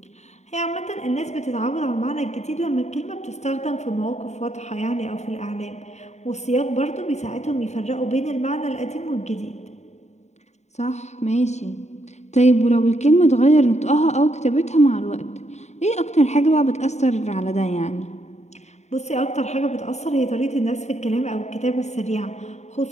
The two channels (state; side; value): late; right; 0.33 ms